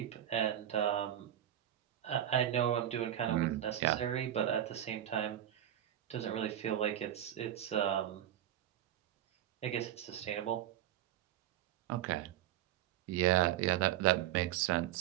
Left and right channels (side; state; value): left; quieter; 11.8 dB